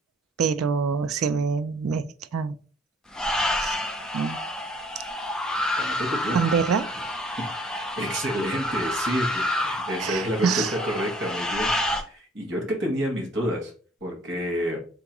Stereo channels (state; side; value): normal; both; correlation 0.57